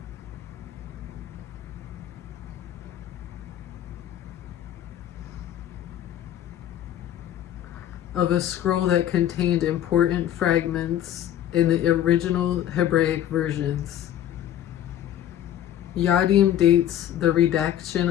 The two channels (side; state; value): right; quieter; 11.4 dB